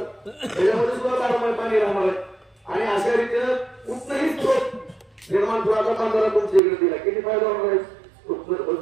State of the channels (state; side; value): drops out; left; at 6.6 s